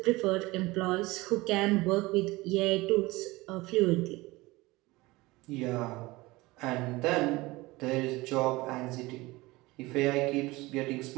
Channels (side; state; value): left; quieter; 21.1 dB